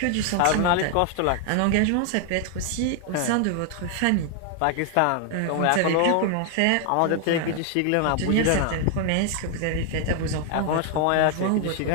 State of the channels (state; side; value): different; both; correlation 0.00